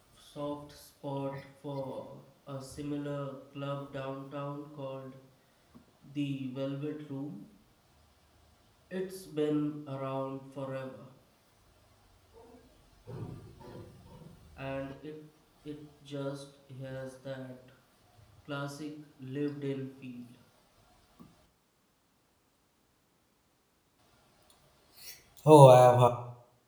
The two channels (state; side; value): identical; both; correlation 1.00